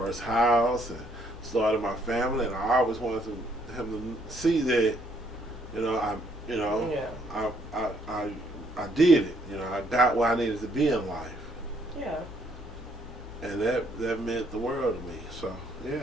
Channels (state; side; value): normal; both; correlation 0.68